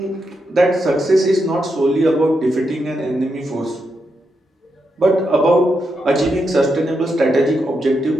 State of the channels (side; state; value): both; normal; correlation 0.84